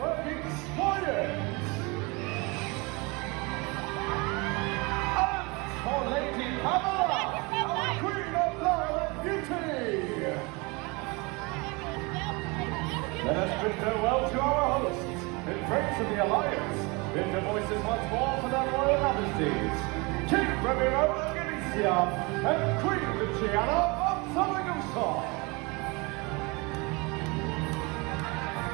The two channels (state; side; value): quieter; left; 27.3 dB